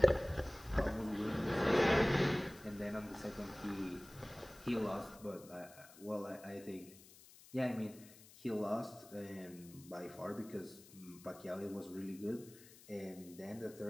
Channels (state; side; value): noise; left; hiss, 21 dB below the sound